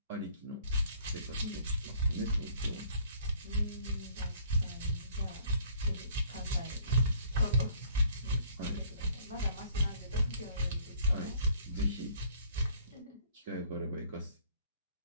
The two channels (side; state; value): both; inverted; correlation -0.57